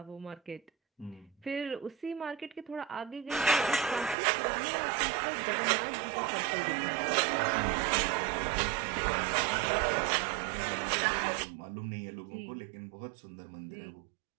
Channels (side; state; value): left; drops out; at 4.2 s